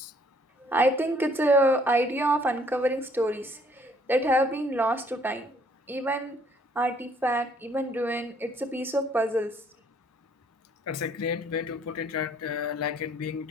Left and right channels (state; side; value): normal; both; correlation 0.62